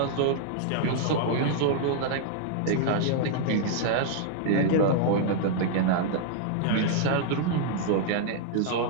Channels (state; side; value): different; both; correlation -0.01